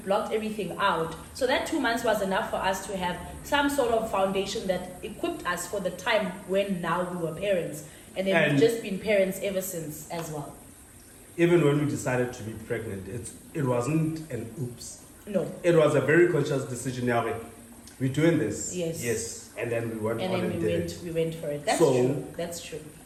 everything out. So that 2 months was enough for us to have some sort of foundation that equipped us for the time when now we were parents. And then we've just been parents ever since as well. Even when we decided to be pregnant, it wasn't an oops. No. It was a very conscious decision. We're doing this. Yes. And then we went and on then and we did went, it. We went for it. That's true.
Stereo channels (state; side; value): identical; both; correlation 1.00